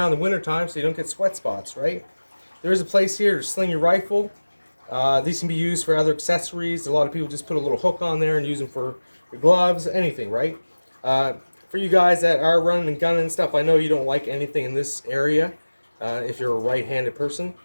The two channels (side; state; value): both; inverted; correlation -1.00